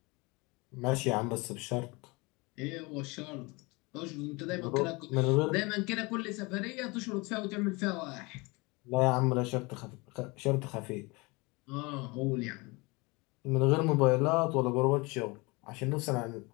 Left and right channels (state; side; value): quieter; right; 26.0 dB